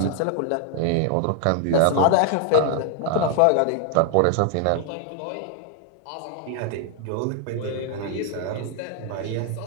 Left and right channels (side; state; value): both; different; correlation 0.00